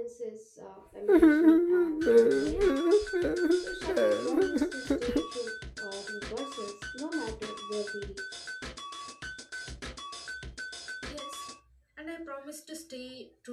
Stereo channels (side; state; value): both; identical; correlation 1.00